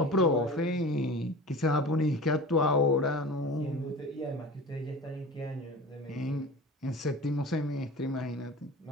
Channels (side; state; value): both; normal; correlation 0.36